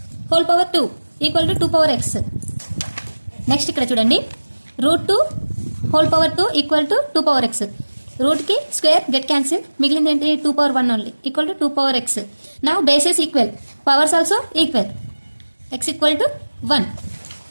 whole power 2 equal to 2/x. Next ఇక్కడ చూడండి √2 whole power 2 equal to 2/x. రూట్కి స్క్వేర్ గెట్ క్యాన్సిల్, మిగిలింది ఏంటి 2/1 only equal to 2/x. నా bases equal, powers also equal, x equal to 1.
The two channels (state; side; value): inverted; both; correlation -1.00